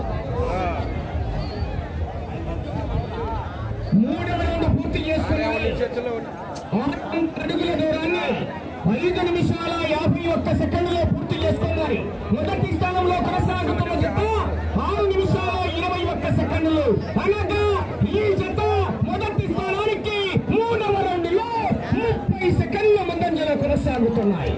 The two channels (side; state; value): both; identical; correlation 1.00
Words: మూడవ రౌండ్ పూర్తి చేసుకున్నాయి. 6 అడుగుల దూరాన్ని 5 నిమిషాల 51 సెకండ్లో పూర్తి చేసుకున్నారు. మొదటి స్థానంలో కొనసాగుతున్న జత 6 నిమిషాల 21 సెకండ్లు. అనగా ఈ జత మొదటి స్థానానికి 3వ రౌండ్లో 30 సెకండ్ల ముందంజలో కొనసాగుతున్నాయి.